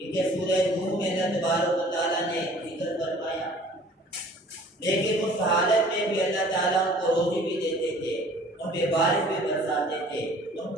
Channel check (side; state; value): both; normal; correlation 0.50